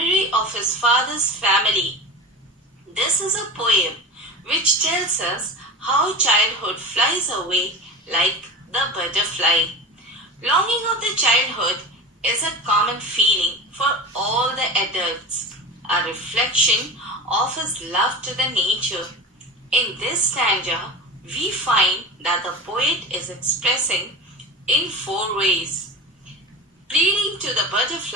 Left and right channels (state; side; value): normal; both; correlation 0.29